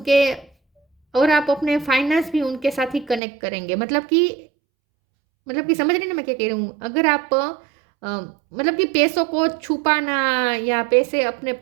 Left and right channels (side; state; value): left; drops out; at 3.2 s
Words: और आप अपने फाइनेंस भी उनके साथ ही कनेक्ट करेंगे। मतलब कि समझ रहे हैं ना मैं क्या कह रही हूँ। अगर आप मतलब कि पैसों को छुपाना या पैसे अपने